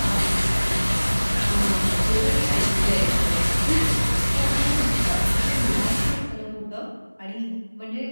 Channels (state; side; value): inverted; both; correlation -1.00